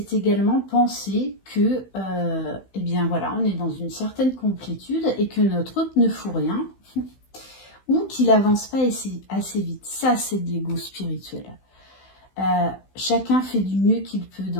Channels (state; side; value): late; right; 16 ms